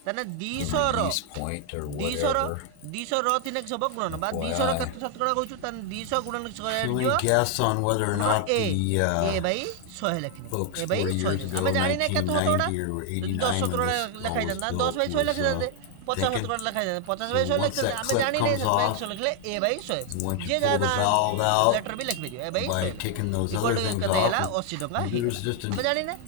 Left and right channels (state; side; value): different; both; correlation 0.00